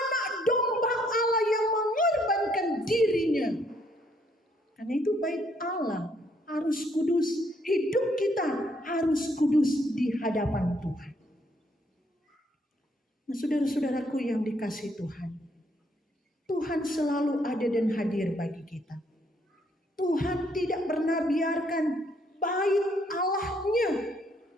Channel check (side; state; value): both; normal; correlation 0.69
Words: domba Allah yang mengorbankan dirinya. Karena itu bait Allah harus kudus. Hidup kita harus kudus di hadapan Tuhan. Nah, saudara-saudaraku yang dikasihi Tuhan, Tuhan selalu ada dan hadir bagi kita. Tuhan tidak pernah biarkan bait Allahnya,